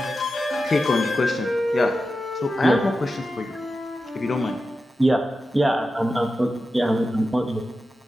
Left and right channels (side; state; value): both; normal; correlation 0.91